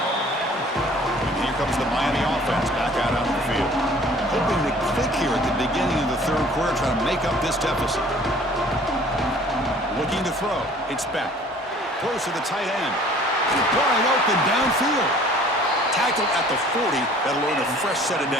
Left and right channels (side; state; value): both; normal; correlation 0.52